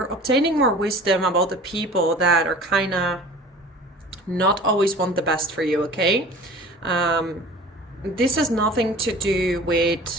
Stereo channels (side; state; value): both; normal; correlation 0.42